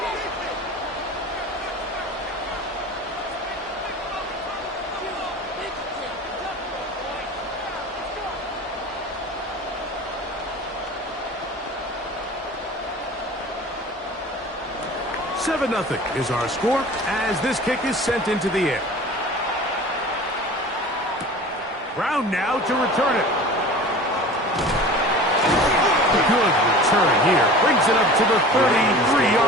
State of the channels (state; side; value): normal; both; correlation 0.39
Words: Seven 0 is our score as this kick is sent into the air. Brown now to return it. Good return here. Brings it up to the